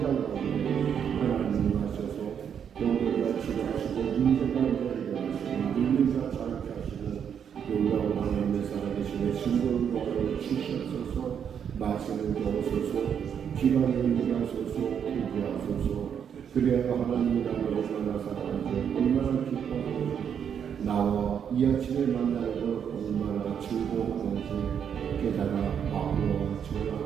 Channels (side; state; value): left; quieter; 8.0 dB